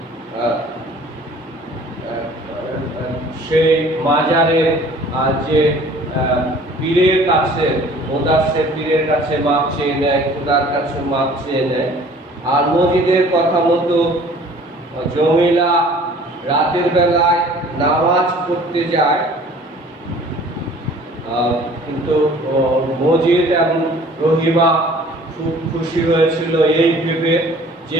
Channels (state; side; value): normal; both; correlation 0.51